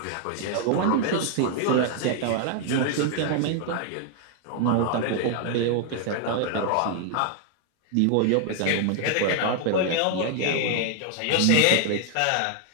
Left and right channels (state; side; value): different; both; correlation 0.00